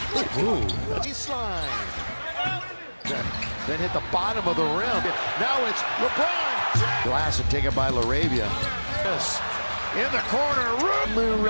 Baseline. Then hit the bottom of the rim. Now it's LeBron. Glass and taken by LaRavia. Yes. In the corner,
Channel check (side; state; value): both; inverted; correlation -1.00